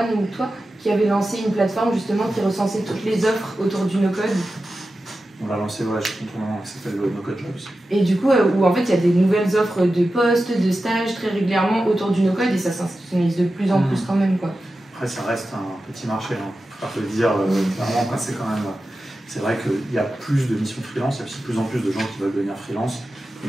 ou toi, qui avait lancé une plateforme justement qui recensait toutes les offres autour du no-code. On l'a lancé, ouais, je suis content, ça s'appelle No-Code Jobs. Et du coup, où en fait, il y a des nouvelles offres de postes, de stages très régulièrement autour du no-code, et ça s'institutionnalise de plus en plus quand même, quoi. Après, ça reste un petit marché, hein. Faut pas le dire clairement. C'est quand même... C'est vrai qu'il y a plus de missions freelance, il y a aussi de plus en plus de gens qui veulent devenir freelance,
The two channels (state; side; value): normal; both; correlation 0.93